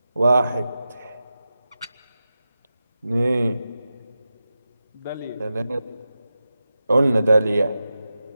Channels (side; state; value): both; inverted; correlation -0.92